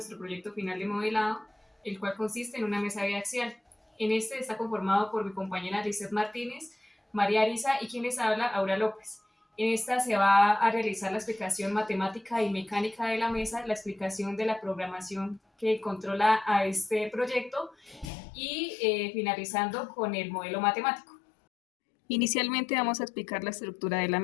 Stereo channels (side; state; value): right; drops out; at 18.1 s